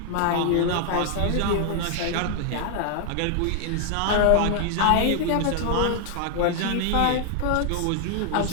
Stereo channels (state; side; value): different; both; correlation 0.00